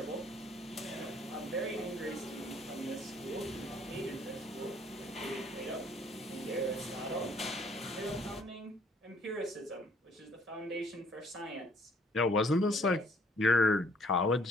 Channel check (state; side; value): normal; both; correlation 0.62